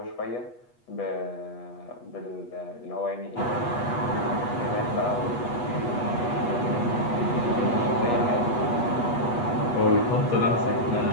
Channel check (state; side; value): late; right; 8.3 ms